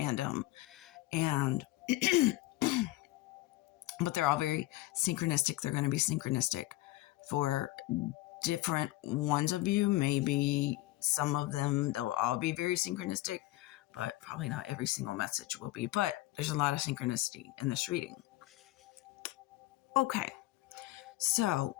and but they're all very synchronistic. They're going to be synchronistic for different ones of you. Maybe some of them, they'll all be very synchronistic, but probably not every single message will be. But there's a lot of synchronicity in this reading. Okay, so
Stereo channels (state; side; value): quieter; right; 18.2 dB